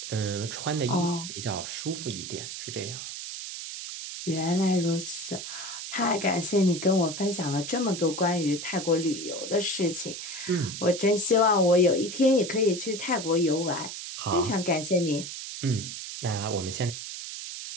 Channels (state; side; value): noise; right; hiss, 8 dB below the sound